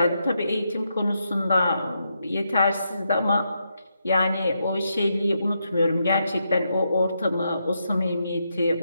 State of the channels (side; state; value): both; inverted; correlation -0.82